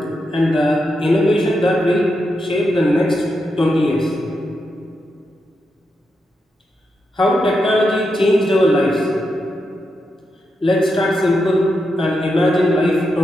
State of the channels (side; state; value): both; normal; correlation 0.85